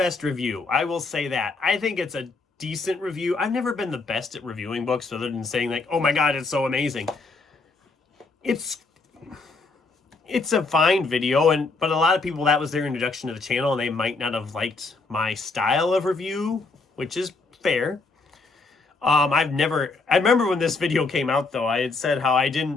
review. I will say that. I think it's a decent review. I've never been the best at reviewing books other than saying like, oh my God, it's so amazing. It's a fine video, but a lot of people, that was their introduction to the channel and they might not have liked my style of review, which is fair. I remember when this video came out though, I had said how I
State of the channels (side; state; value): right; quieter; 3.8 dB